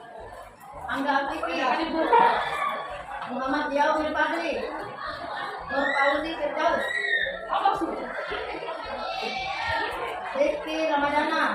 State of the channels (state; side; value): identical; both; correlation 1.00